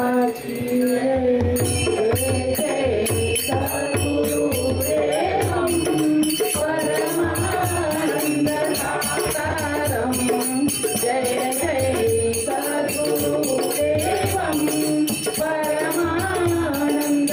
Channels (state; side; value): identical; both; correlation 1.00